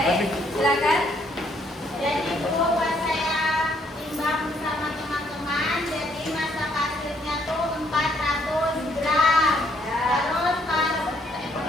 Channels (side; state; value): both; normal; correlation 0.69